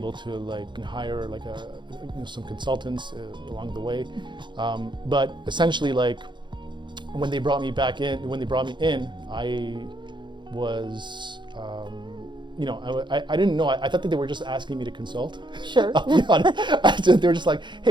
to hire some consultants along the way. But essentially, when they brought me in, I was. I didn't know. I thought that they were just asking me to consult. Sure. I'll be honest. They were just like,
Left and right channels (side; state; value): left; late; 0.23 ms